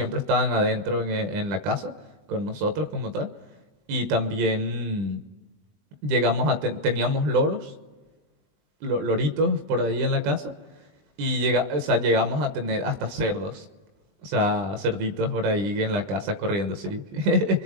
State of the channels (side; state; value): left; late; 20 ms